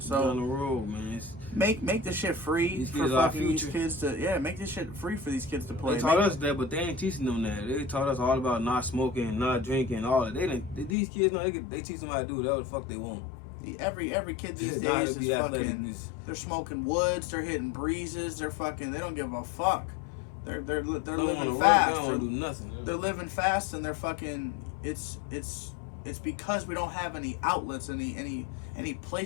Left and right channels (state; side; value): drops out; right; at 11.0 s